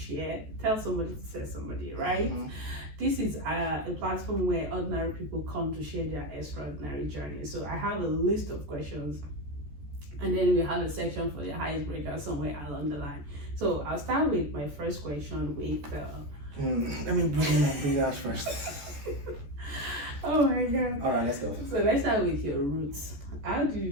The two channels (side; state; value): left; late; 14 ms